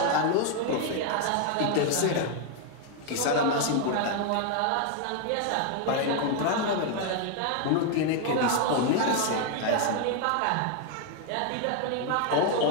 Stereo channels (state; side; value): different; both; correlation 0.00